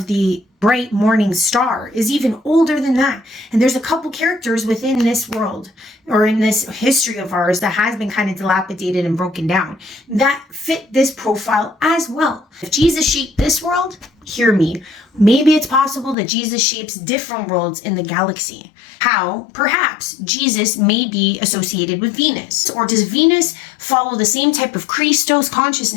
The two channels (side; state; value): right; drops out; at 16.2 s